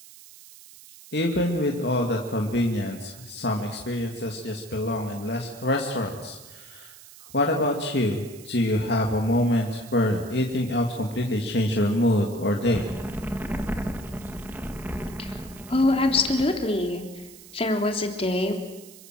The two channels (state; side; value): noise; right; hiss, 19 dB below the sound